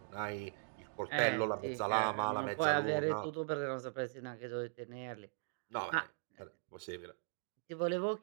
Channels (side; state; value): left; silent; digital silence